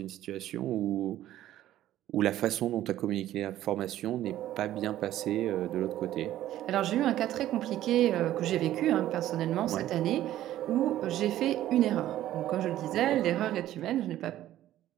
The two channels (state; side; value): quieter; left; 13.3 dB